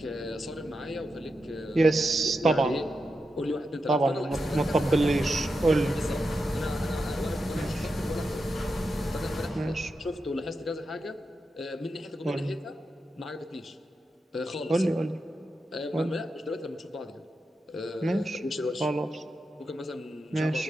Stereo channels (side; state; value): both; normal; correlation 0.88